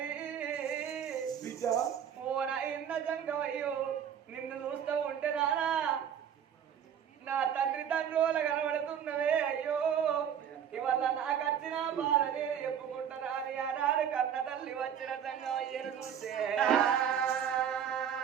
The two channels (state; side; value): quieter; left; 8.6 dB